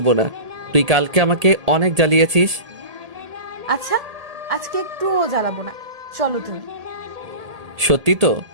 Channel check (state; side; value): late; left; 1.8 ms